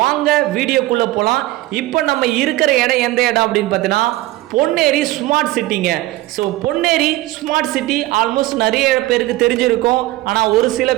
வாங்க வீடியோக்குள்ளே போகலாம். இப்போ நம்ம இருக்கிற இடம் எந்த இடம் அப்படின்னு பார்த்தீங்கன்னா பொன்னேரி ஸ்மார்ட் சிட்டிங்க. So Ponneri smart city almost நிறைய பேருக்கு தெரிஞ்சிருக்கும், ஆனால் ஒரு சில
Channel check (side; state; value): left; quieter; 17.7 dB